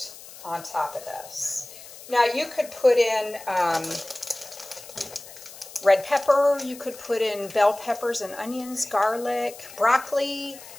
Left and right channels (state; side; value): noise; left; hiss, 17 dB below the sound